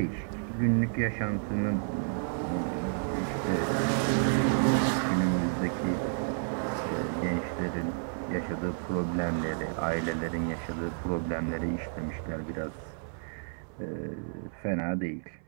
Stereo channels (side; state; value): left; silent; 57 dB below the other